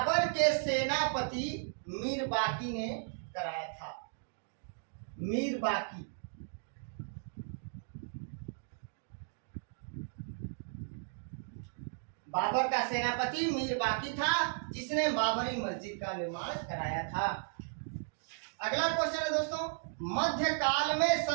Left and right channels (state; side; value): silent; left; digital silence